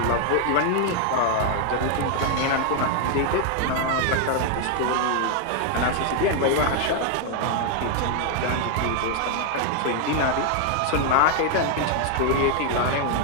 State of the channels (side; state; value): both; different; correlation 0.00